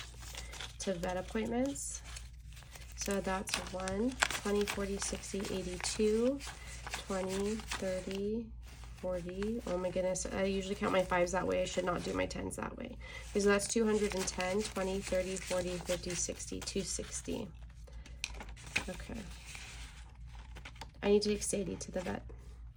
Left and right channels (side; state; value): both; identical; correlation 1.00